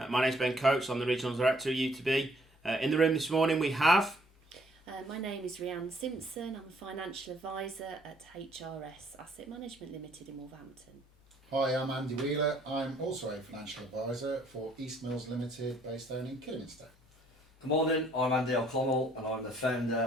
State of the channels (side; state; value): both; normal; correlation 0.64